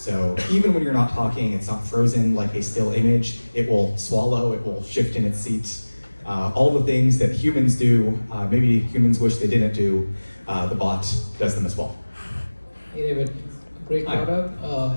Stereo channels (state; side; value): inverted; both; correlation -1.00